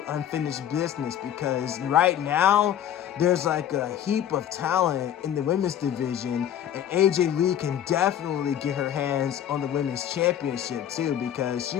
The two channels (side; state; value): right; quieter; 10.4 dB